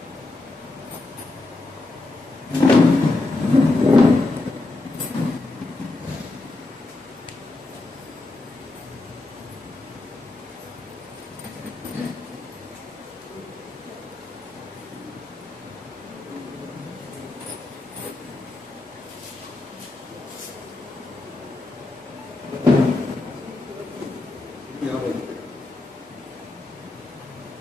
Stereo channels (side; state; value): right; quieter; 3.1 dB